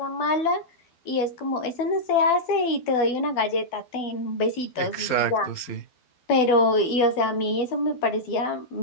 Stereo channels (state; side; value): late; right; 12 ms